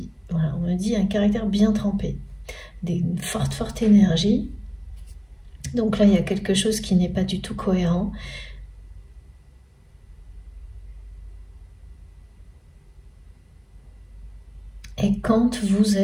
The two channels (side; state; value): both; identical; correlation 1.00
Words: voilà, on me dit un caractère bien trempé, une forte énergie. Donc là, il y a quelque chose qui n'est pas du tout cohérent. Et quand vous